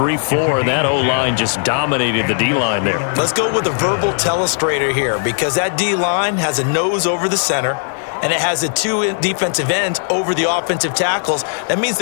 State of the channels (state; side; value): silent; right; digital silence